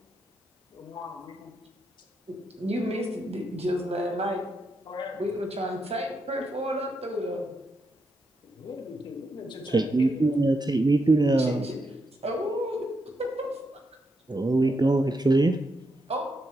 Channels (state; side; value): normal; both; correlation 0.82